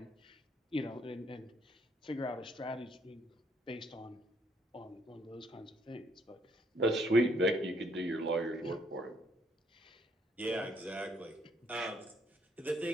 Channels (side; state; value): both; normal; correlation 0.69